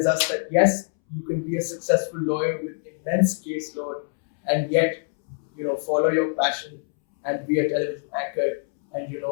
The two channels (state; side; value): silent; right; 62 dB below the other